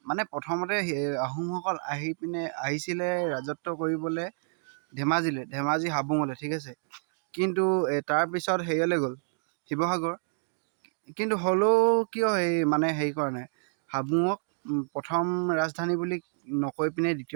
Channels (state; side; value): silent; left; 58 dB below the other